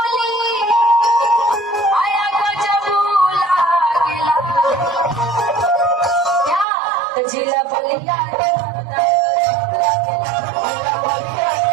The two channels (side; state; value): left; drops out; at 6.7 s